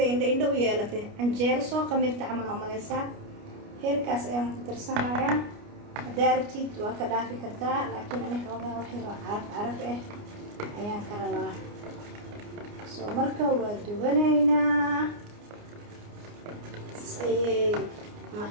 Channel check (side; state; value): left; late; 29 ms